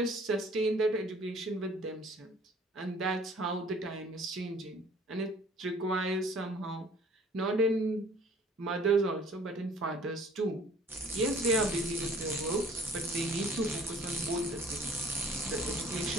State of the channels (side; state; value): both; normal; correlation 0.53